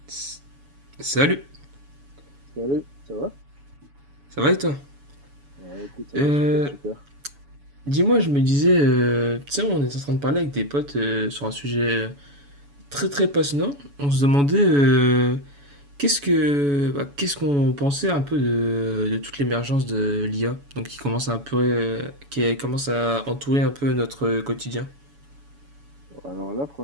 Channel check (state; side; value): late; left; 7.0 ms